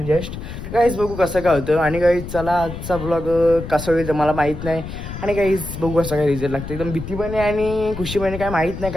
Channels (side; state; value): left; noise; rumble, 9 dB below the sound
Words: जस्ट. गाईज बघू कसं काय होतं. आणि गाईज चला आजचा ब्लॉग कसा होईल मला माहीत नाही. आणि गाईज बघू कसं काय रिझल्ट लागतं. एकदम भीती पण आहे आणि खुशी पण आहे, काय माहीत नाही